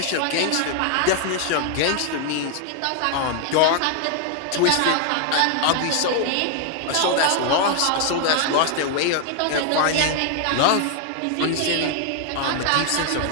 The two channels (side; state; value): both; different; correlation 0.00